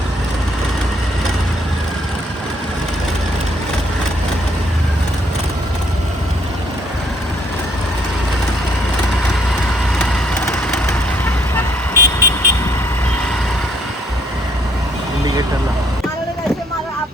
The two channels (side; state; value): both; normal; correlation 0.66